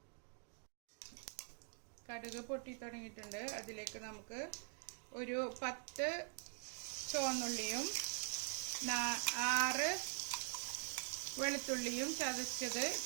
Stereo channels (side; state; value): left; quieter; 38.8 dB